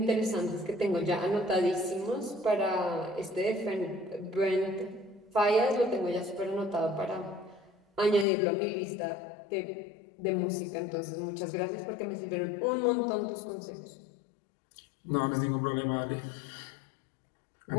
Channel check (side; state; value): right; drops out; at 8.2 s